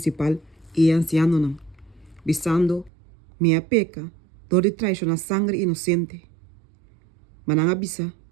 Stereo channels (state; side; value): drops out; left; at 2.9 s